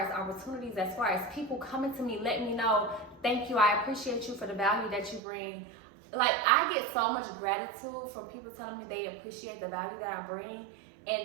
opportunities, as far as people coming to me, letting me know, thank you, I appreciate you for the value that you bring. Like, I get so much gratitude from people telling me they appreciate the value that I bring.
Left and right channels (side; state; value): left; drops out; at 5.2 s